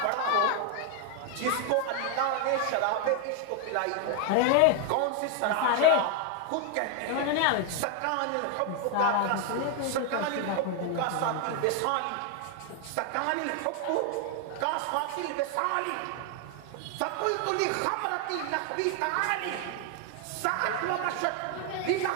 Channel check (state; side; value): different; both; correlation 0.00